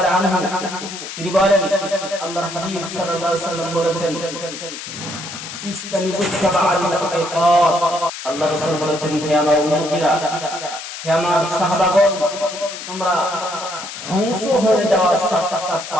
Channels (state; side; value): noise; left; hiss, 10 dB below the sound